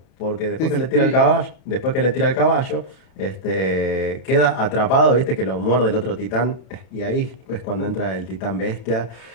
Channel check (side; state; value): right; late; 32 ms